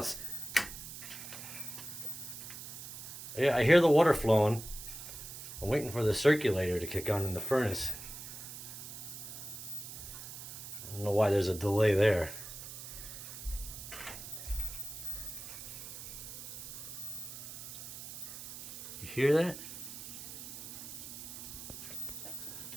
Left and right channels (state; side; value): noise; right; hiss, 10 dB below the sound